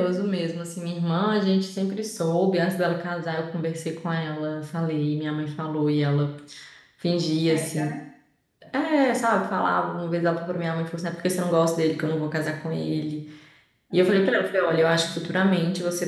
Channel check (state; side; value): identical; both; correlation 1.00